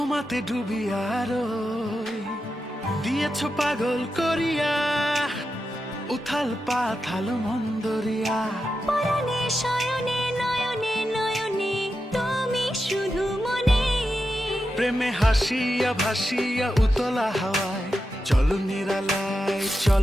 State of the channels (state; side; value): normal; both; correlation 0.89